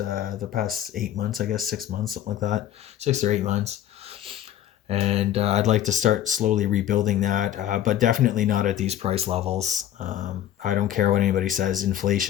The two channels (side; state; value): right; quieter; 11.6 dB